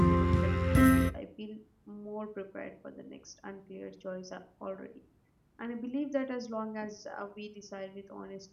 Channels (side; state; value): both; identical; correlation 1.00